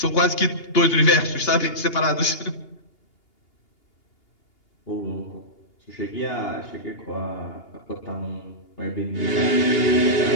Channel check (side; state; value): right; late; 2.8 ms